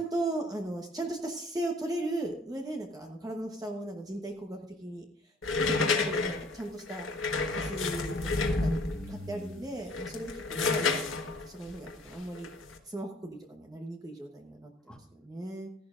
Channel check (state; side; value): normal; both; correlation 0.55